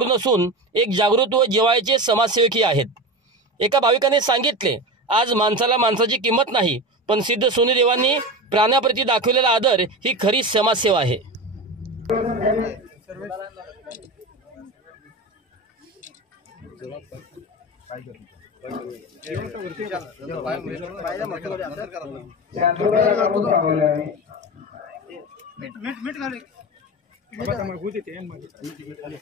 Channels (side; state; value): both; normal; correlation 0.24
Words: नसून एक जागृत व जिव्हाळ्याचे समाजसेवकही आहेत. एका भाविकाने सांगितले, आज माणसाला माणसाची किंमत नाही, पण सिद्ध सोनूदेवांनी प्राण्याप्रती दाखवलेला आदर ही खरी समाजसेवा आहे.